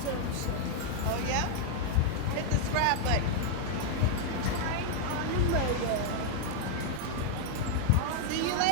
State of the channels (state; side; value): different; both; correlation 0.00